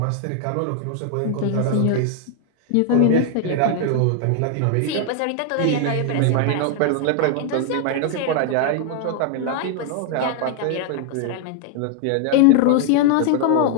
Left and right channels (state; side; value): different; both; correlation 0.00